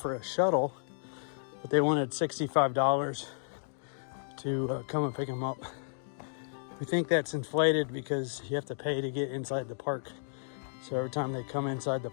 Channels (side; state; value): right; silent; digital silence